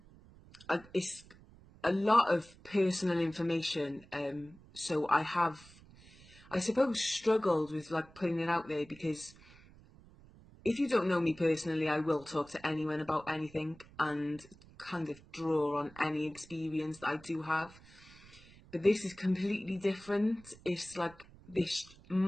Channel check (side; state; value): right; noise; rumble, 23 dB below the sound